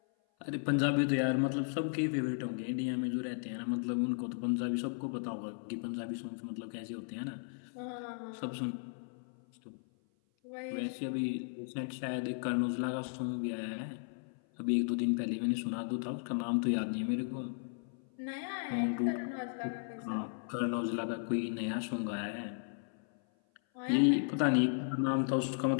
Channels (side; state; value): right; silent; 54 dB below the other